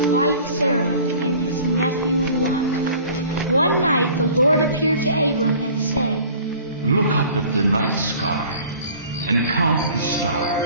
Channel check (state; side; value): inverted; both; correlation -0.48